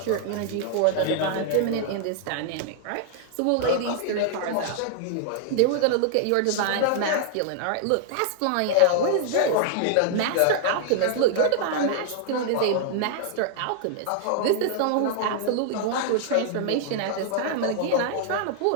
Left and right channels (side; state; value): both; different; correlation -0.01